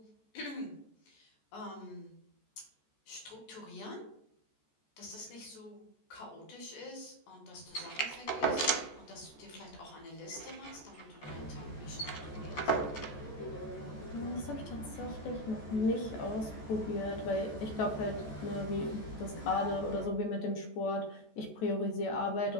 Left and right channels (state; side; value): late; right; 14 ms